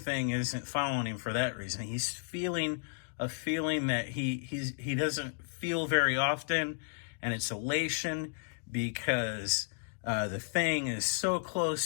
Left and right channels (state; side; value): silent; right; digital silence